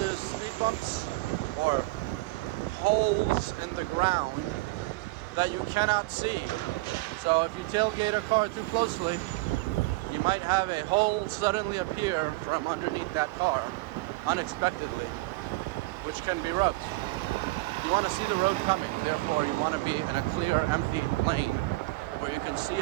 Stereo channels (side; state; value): left; quieter; 22.1 dB